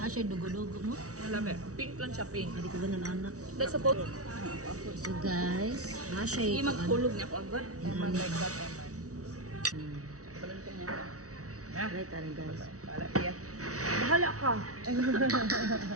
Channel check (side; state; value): left; late; 0.66 ms